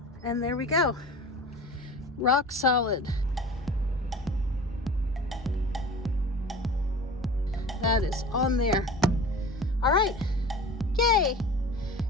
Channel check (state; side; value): normal; both; correlation 0.38